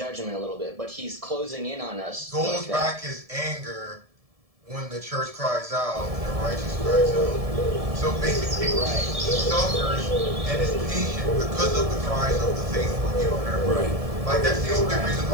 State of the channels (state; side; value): late; left; 1.7 ms